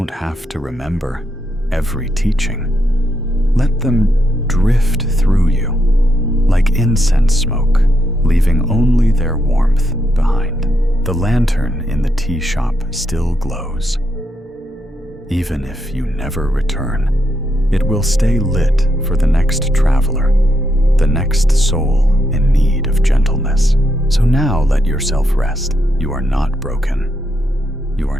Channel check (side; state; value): both; normal; correlation 0.80